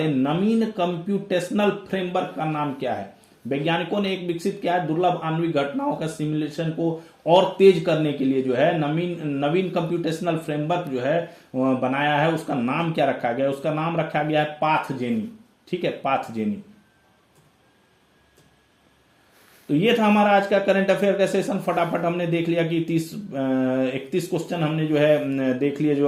नवीन कंप्यूटेशनल फ्रेमवर्क का नाम क्या है? वैज्ञानिकों ने एक विकसित किया है दुर्लभ आणविक घटनाओं का सिमुलेशन को और तेज करने के लिए जो है नवीन कंप्यूटेशनल फ्रेमवर्क जो है बनाया है, उसका नाम क्या रखा गया? उसका नाम रखा गया है पाथजेनी। ठीक है, पाथजेनी। तो ये था हमारा आज का करंट अफेयर का सेशन। फटाफट हमने देख लिया कि 31 क्वेश्चन हमने जो है देख लिए, जो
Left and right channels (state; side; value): identical; both; correlation 1.00